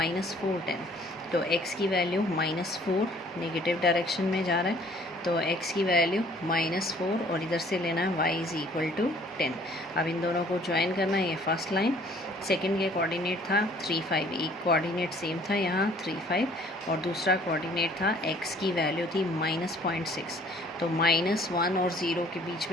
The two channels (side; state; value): both; normal; correlation 0.56